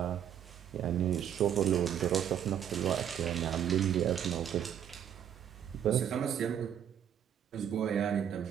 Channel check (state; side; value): quieter; left; 9.5 dB